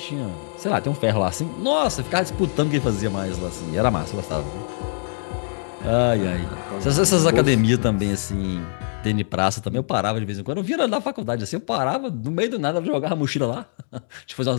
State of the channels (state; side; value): silent; right; digital silence